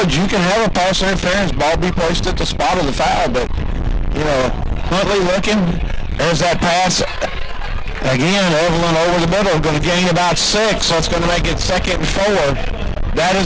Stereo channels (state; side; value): identical; both; correlation 1.00